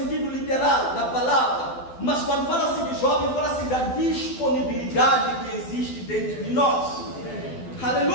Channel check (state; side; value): late; right; 12 ms